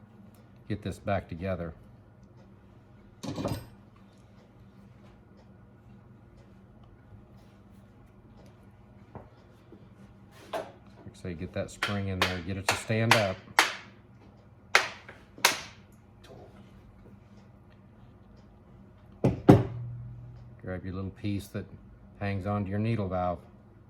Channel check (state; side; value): identical; both; correlation 1.00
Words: back together. So you get that spring in there, get it to stand up. Grab your little piece that hangs onto your needle valve